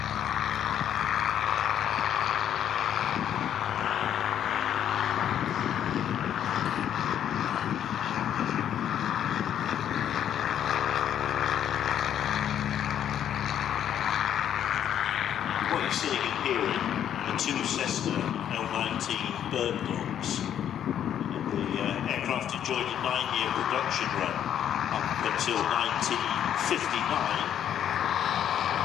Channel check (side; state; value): right; quieter; 9.9 dB